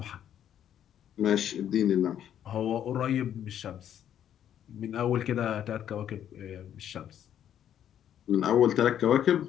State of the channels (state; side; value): quieter; right; 10.1 dB